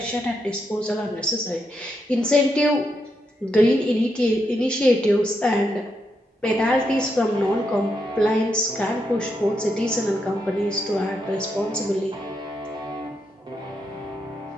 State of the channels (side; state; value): both; normal; correlation 0.82